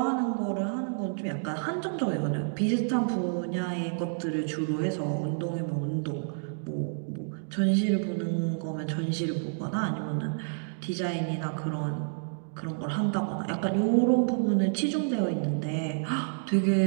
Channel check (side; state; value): left; silent; digital silence